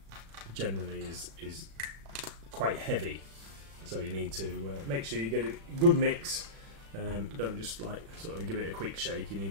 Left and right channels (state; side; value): late; left; 36 ms